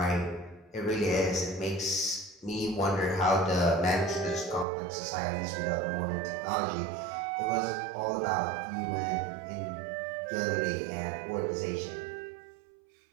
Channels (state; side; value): drops out; left; at 4.7 s